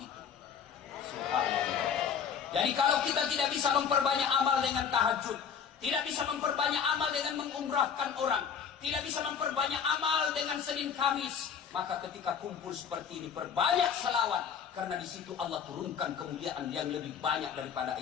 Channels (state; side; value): quieter; right; 7.3 dB